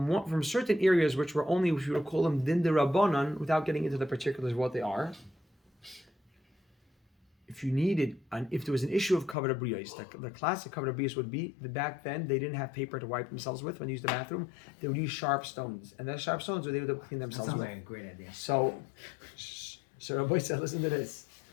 certain areas which were only, if you would call them din de rabbanan, without getting into the particulars of what they are. If you needed, and if there was an issue of kavod abriyos, the classic kavod abriyos would be that back then they didn't have paper to wipe themselves with when they used the bathroom. They would use sharp stones, and those sharp stones were they would clean themselves Sounds with. like a great idea. So Rabbi said, listen to this.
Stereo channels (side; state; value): right; drops out; at 9.3 s